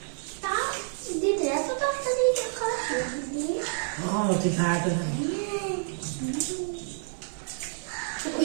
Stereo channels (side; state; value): left; silent; digital silence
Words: তা দিদি এত তাড়াতাড়ি খারাপ হয়ে দিদি তুই খাওয়াতে